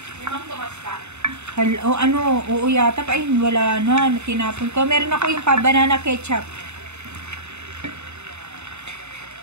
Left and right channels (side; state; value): left; late; 0.82 ms